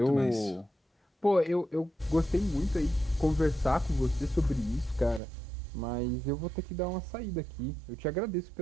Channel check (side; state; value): left; drops out; at 5.2 s